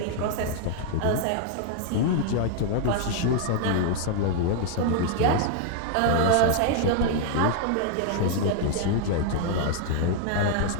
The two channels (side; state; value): both; different; correlation 0.00